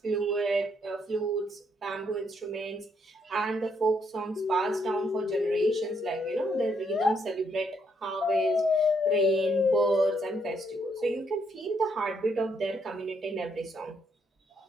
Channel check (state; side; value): normal; both; correlation 0.74